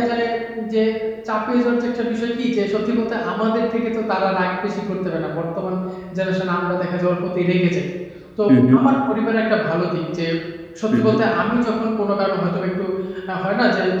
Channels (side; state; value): both; identical; correlation 1.00